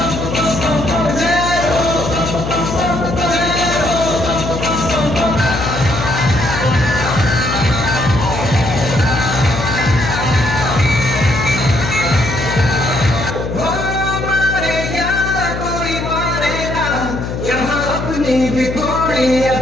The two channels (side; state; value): left; noise; hum, 5 dB below the sound